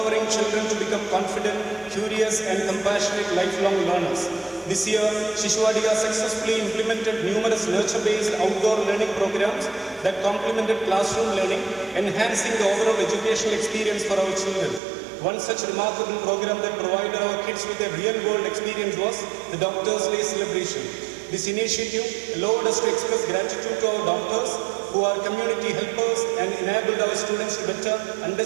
children to become confident, curious and compassionate lifelong learners. This year, Shishuvadiga successfully implemented numerous nurture-based outdoor learning programs that complemented classroom learning, enhancing the overall educational experience for our children. One such remarkable program that provided our kids with a real-world experience was the Doctor's Day celebration. This initiative allowed us to express gratitude to our doctors who are community helpers and enabled our students to better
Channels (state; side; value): drops out; left; at 14.8 s